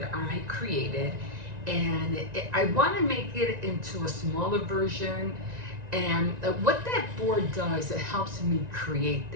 I created, and I want to make it into a smaller version. And what that board does, it helps me create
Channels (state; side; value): late; left; 1.9 ms